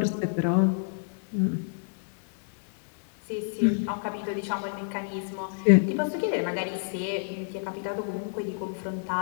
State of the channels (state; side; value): silent; right; digital silence